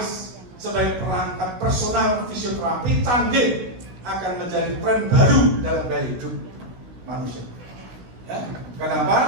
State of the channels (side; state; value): left; late; 16 ms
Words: sebagai perangkat personal fisioterapi canggih akan menjadi tren baru dalam gaya hidup manusia. Ya.